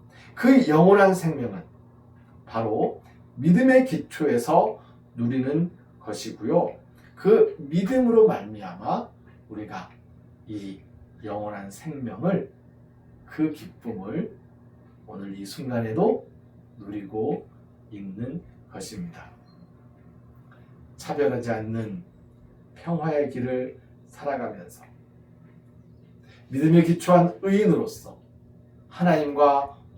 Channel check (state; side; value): identical; both; correlation 1.00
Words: 그 영원한 생명은 바로 믿음의 기초에서 누리는 것이고요. 그 믿음으로 말미암아 우리가 이 영원한 생명을, 그 기쁨을 오늘 이 순간에도 누리고 있는 것입니다. 차별하지 않는 평화의 길을 살아가면서 믿음에 기초한 의인으로서 하나님과